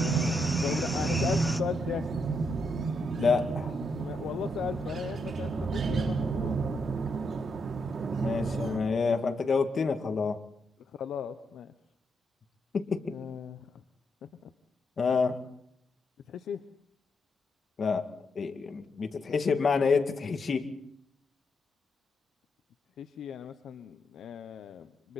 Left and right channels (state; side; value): normal; both; correlation 0.80